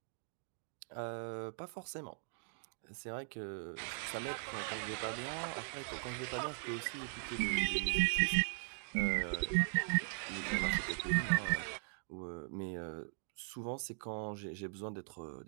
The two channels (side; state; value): left; silent; digital silence